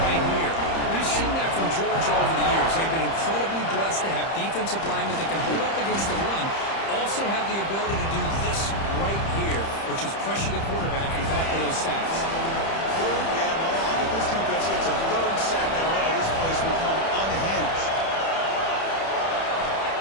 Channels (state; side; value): late; right; 30 ms